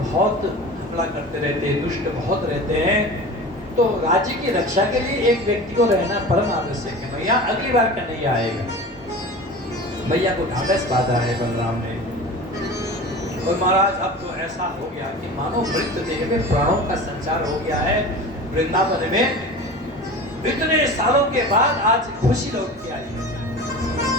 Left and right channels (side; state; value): both; normal; correlation 0.35